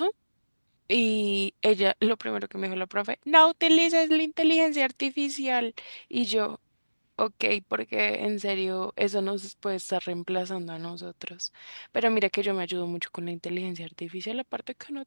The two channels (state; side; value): inverted; both; correlation -1.00